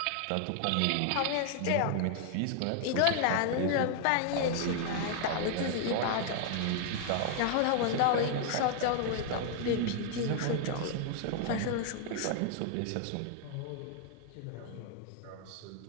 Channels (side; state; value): both; different; correlation 0.00